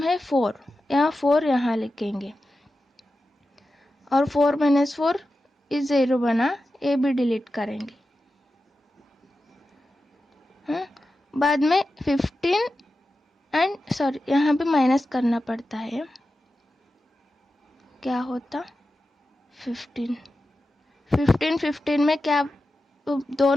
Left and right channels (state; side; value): normal; both; correlation 0.92